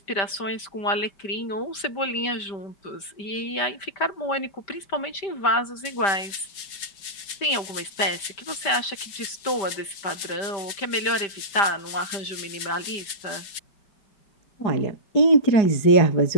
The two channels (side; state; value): right; late; 5.1 ms